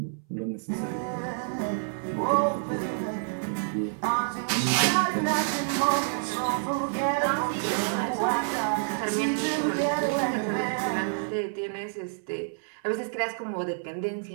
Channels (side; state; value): left; silent; 59 dB below the other